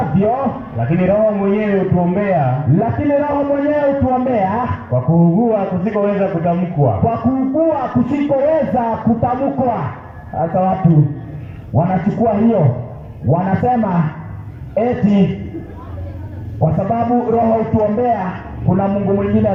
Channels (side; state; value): both; identical; correlation 1.00